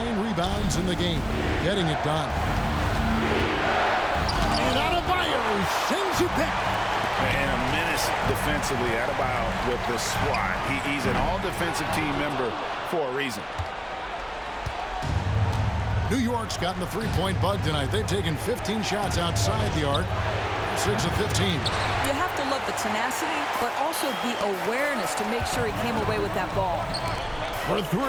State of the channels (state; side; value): identical; both; correlation 1.00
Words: rebounds in the game, getting it done. And Adebayo sends it back. And a menace defensively. Adebayo with the swat. He's an all-defensive team member for a reason. New York's gotten the three-point bug tonight. They've taken 15 shots outside the arc. 6 of 15. You have to love the tenacity, but also the awareness to make sure he came away with that ball. For